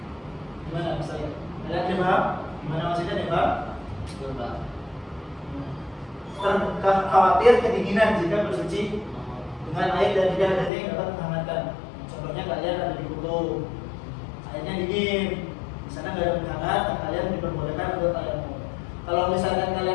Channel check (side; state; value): right; drops out; at 10.7 s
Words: Gimana saya? Ada yang paham? Gimana maksudnya nih Pak? Coba. Khawatir kedinginan jika bersuci dengan air dan tidak adanya yang dapat menghangatkan. Contohnya kalian ada di kutub, airnya dingin, di sana nggak ada penghangat, kalian diperbolehkan untuk tayamum. Kalau misalkan